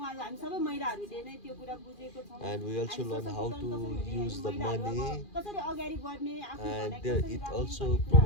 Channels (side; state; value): right; late; 2.4 ms